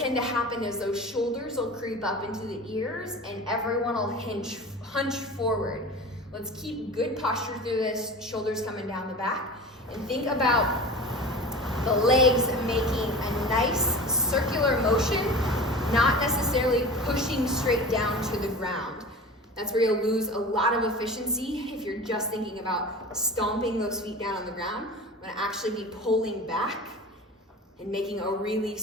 to happen is those shoulders will creep up into the ears and everyone will hunch forward. Let's keep good posture through this, shoulders coming down the back, and think about the legs making a nice circular motion, not necessarily pushing straight down to the ground. That's where you'll lose a lot of efficiency if you're just thinking about stomping those feet down on the ground. I'm gonna actually be pulling back and making a really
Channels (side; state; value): both; normal; correlation 0.35